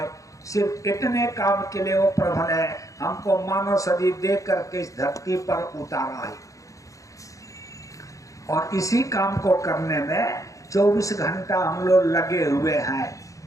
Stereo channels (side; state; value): right; late; 0.16 ms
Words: सिर्फ इतने काम के लिए वो प्रभु ने हमको मानव शरीर दे करके इस धरती पर उतारा है। और इसी काम को करने में 24 घंटा हम लोग लगे हुए हैं।